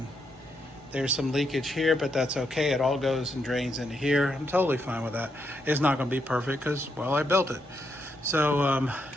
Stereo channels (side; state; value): both; normal; correlation 0.80